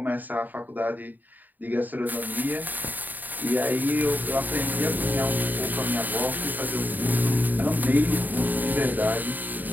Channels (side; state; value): left; late; 0.086 ms